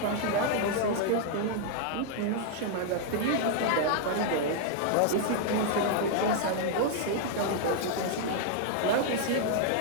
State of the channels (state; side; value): different; both; correlation -0.01